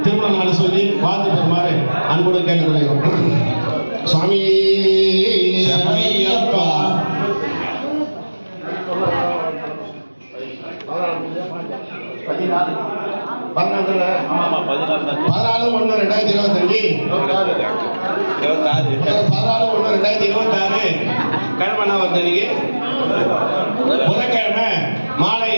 திருமண நாளில் சொல்லி வாழ்த்து பெறுமாறு அன்போடு கேட்டுக்கொள்கிறோம். சுவாமி சரணையப்பா. 14/1/2025 கிழமை வந்தன்னைக்கு புதன்கிழமை மாலை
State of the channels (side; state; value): both; inverted; correlation -1.00